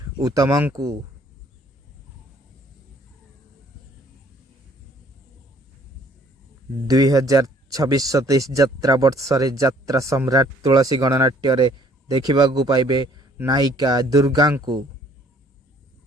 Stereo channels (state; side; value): normal; both; correlation 0.59